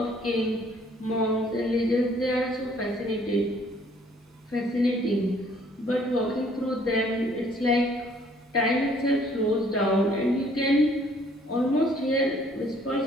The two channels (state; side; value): normal; both; correlation 0.61